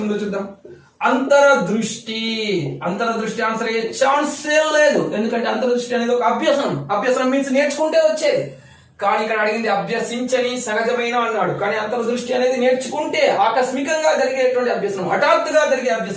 ఉందో చూద్దాం. అంతరదృష్టి ఆన్సర్ అయ్యే ఛాన్సే లేదు. ఎందుకంటే అంతరదృష్టి అనేది ఒక అభ్యసనం మీన్స్ నేర్చుకుంటే వచ్చేది. కానీ ఇక్కడ అడిగింది అభ్యసించని సహజమైన అన్నాడు. కానీ అంతర్దృష్టి అనేది నేర్చుకుంటే ఆకస్మికంగా జరిగేటువంటి అభ్యసనం, హఠాత్తుగా జరిగే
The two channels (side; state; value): both; identical; correlation 1.00